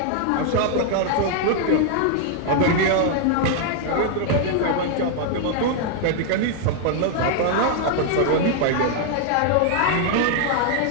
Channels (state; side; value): different; both; correlation 0.00